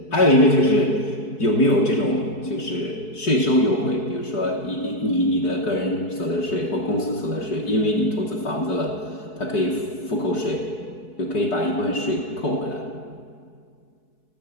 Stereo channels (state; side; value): late; right; 4.7 ms